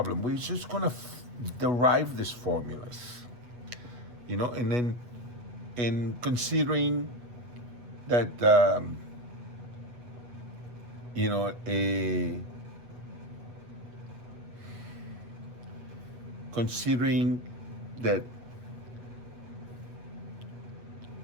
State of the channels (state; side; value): late; left; 8.2 ms